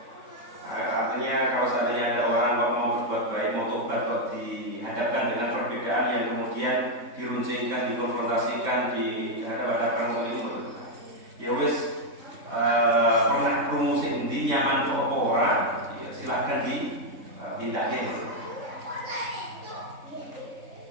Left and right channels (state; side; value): late; left; 3.6 ms